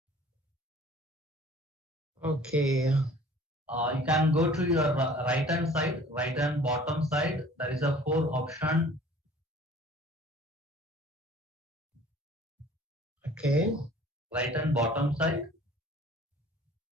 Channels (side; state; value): both; normal; correlation 0.50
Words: Okay. You can go to your right hand side, right hand bottom side. There is a 4 option. Okay. Right hand bottom side.